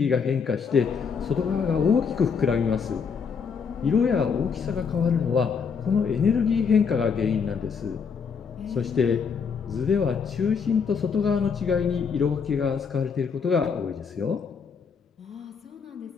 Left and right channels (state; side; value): quieter; right; 6.0 dB